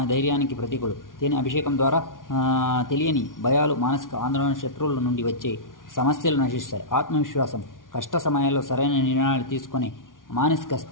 ధైర్యానికి ప్రతీకులు. తేనె అభిషేకం ద్వారా తెలియని భయాలు, మానసిక ఆందోళన, శత్రువుల నుండి వచ్చే సమస్యలు నశిస్తాయి. ఆత్మవిశ్వాసం. కష్ట సమయాల్లో సరైన నిర్ణయాలు తీసుకొని మానసిక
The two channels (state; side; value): late; right; 0.89 ms